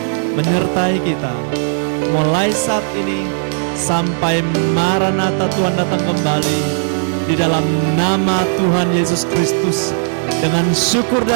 Menyertai kita mulai saat ini sampai Maranatha Tuhan datang kembali. Di dalam nama Tuhan Yesus Kristus, dengan syukur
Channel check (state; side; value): silent; left; digital silence